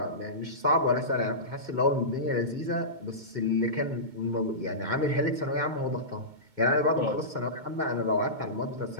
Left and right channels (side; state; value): left; late; 2.2 ms